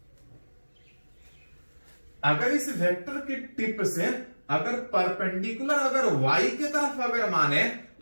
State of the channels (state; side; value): inverted; both; correlation -1.00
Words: अगर इस वेक्टर के टिप से अगर परपेंडिकुलर अगर y की तरफ अगर माने